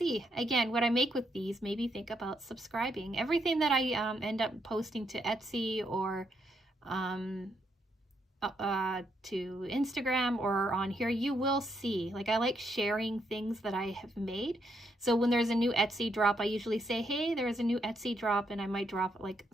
again, what I make with these, maybe think about subscribing. Everything that I end up posting to Etsy or to Instagram or on here, you will see. Like, I like sharing things that I have made. So when there's a new Etsy drop, I usually say, hey, there's a new Etsy drop, and I might drop like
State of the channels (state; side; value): normal; both; correlation 0.77